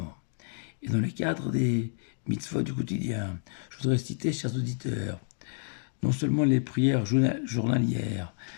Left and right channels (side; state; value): right; silent; digital silence